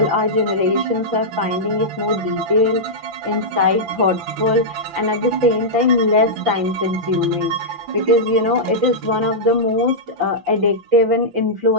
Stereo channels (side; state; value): left; late; 5.9 ms